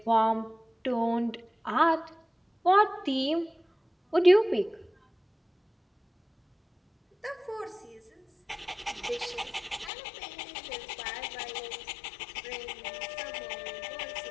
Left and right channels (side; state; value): right; drops out; at 9.9 s